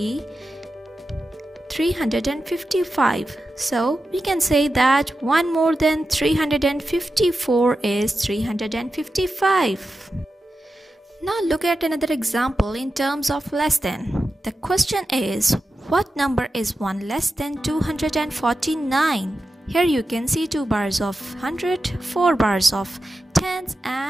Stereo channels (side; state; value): both; normal; correlation 0.91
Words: 355. So we can say that 1 more than 354 is 355. Now look at another example in terms of less than. The question is, what number is 1 less than 249? Here you can see 2 bars of 100, 4 bars of tens